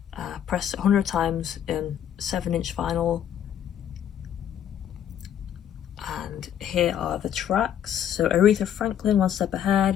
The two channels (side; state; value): right; quieter; 9.8 dB